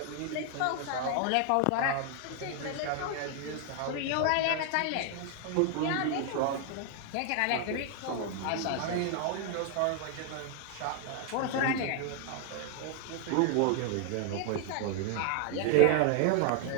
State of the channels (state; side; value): different; both; correlation 0.00